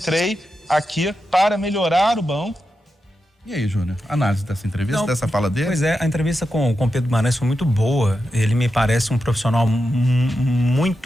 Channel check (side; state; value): both; normal; correlation 0.89